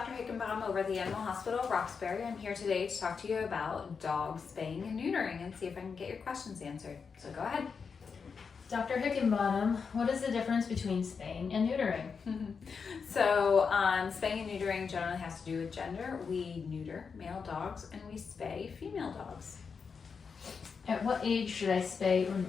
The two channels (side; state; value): right; quieter; 5.7 dB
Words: Hickenbottom over at the Animal Hospital of Roxbury. I'm here today to talk to you about dog spaying and neutering and see if I can get your questions answered. So go ahead. Dr. Hickenbottom, what is the difference between spaying and neutering? So spaying and neutering generally has to do with gender. We neuter male dogs and we spay female dogs. At what age should I spay or